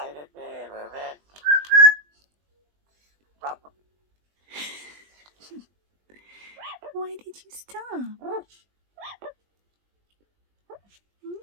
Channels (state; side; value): late; left; 20 ms